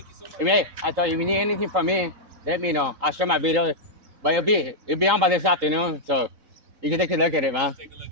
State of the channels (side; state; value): left; late; 3.8 ms